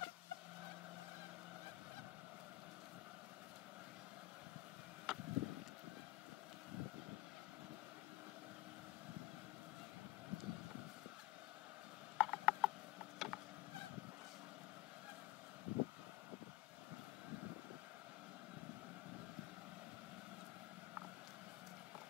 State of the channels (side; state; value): right; quieter; 19.2 dB